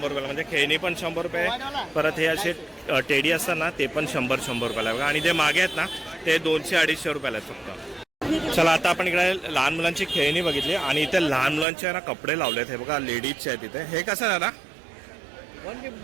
रुपयाला. म्हणजे खेळणी पण 100 रुपये. परत हे असे टेडी असतात ना ते पण 100 रुपयाला बघा. आणि जे मागे आहेत ना ते 200-250 रुपयाला आहेत फक्त. चला आता आपण इकडे लहान मुलांची खेळणी बघितली. आणि इथे लहान मुलांचे ना कपडे लावलेत. हे बघा लेडीजचे आहेत इथे. हे कसं आहे ना?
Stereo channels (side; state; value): left; drops out; at 11.7 s